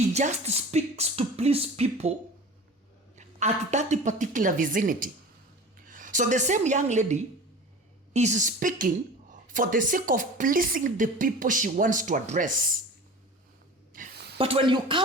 just speaks to please people at that particular vicinity. So the same young lady is speaking for the sake of pleasing the people she wants to address. But when you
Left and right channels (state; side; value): normal; both; correlation 0.37